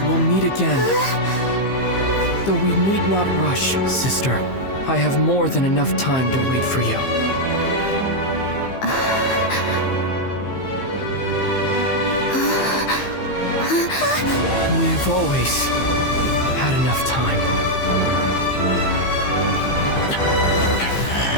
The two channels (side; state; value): right; late; 15 ms